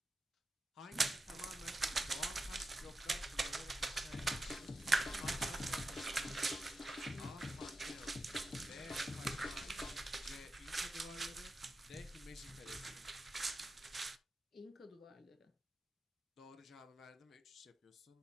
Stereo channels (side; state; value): both; normal; correlation 0.90